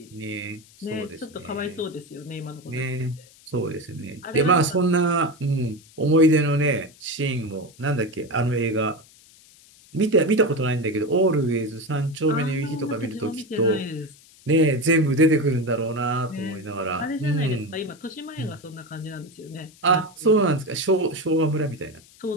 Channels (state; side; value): noise; left; hiss, 25 dB below the sound